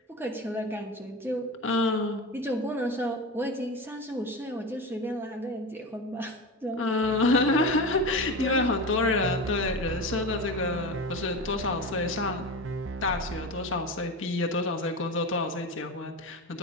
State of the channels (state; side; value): normal; both; correlation 0.25